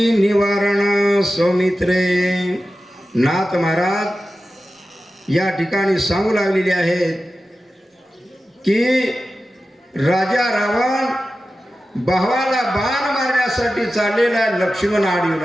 निवारण सौमित्रे. नाथ महाराज या ठिकाणी सांगू लागलेले आहेत की राजा रावण भावाला बाण मारण्यासाठी चाललेला लक्ष्मण आडीवर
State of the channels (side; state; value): both; normal; correlation 0.93